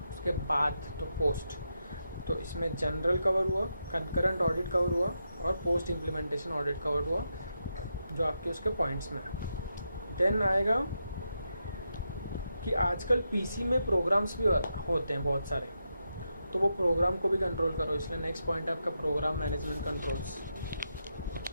उसके बाद तो पोस्ट। तो इसमें जनरल कवर हुआ, कंकरेंट ऑडिट कवर हुआ और पोस्ट इम्प्लीमेंटेशन ऑडिट कवर हुआ, जो आपके उसके पॉइंट्स में है। देन आएगा कि आजकल पीसी में प्रोग्राम्स भी होते हैं बहुत सारे, तो वो प्रोग्राम को भी कंट्रोल करो, इसलिए नेक्स्ट पॉइंट है आपका program management controls.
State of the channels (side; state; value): both; inverted; correlation -0.85